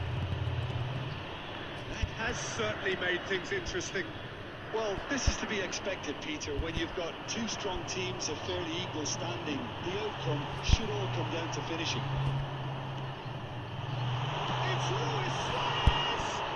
That has certainly made things interesting. Well, this is to be expected, Peter. When you've got two strong teams of fairly equal standing, the outcome should all come down to finishing. It's Luis Suarez!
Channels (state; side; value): identical; both; correlation 1.00